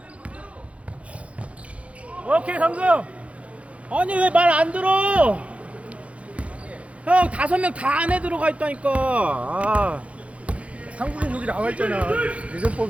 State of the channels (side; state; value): left; late; 0.063 ms